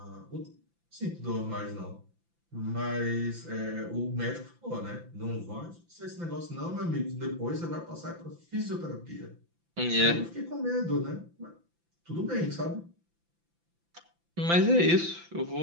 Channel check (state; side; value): late; left; 5.9 ms